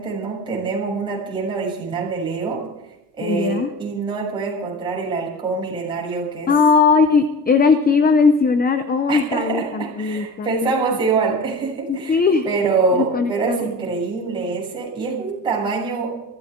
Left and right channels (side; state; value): both; normal; correlation 0.33